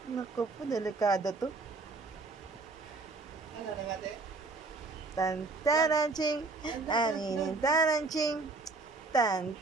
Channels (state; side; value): quieter; left; 3.7 dB